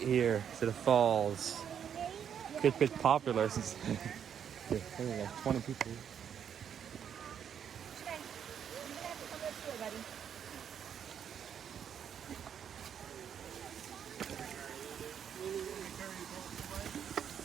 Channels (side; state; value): left; quieter; 8.4 dB